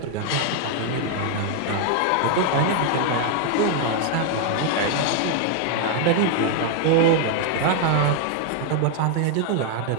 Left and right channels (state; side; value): different; both; correlation 0.00